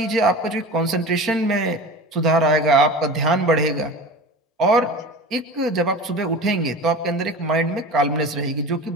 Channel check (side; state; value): both; normal; correlation 0.34